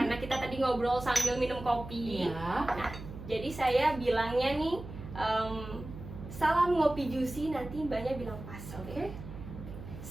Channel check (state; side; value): noise; right; hum, 12 dB below the sound